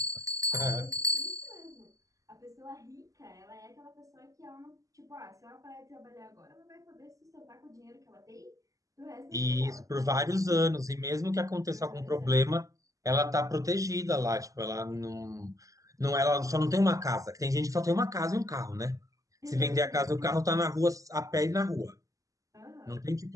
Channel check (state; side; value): late; left; 0.16 ms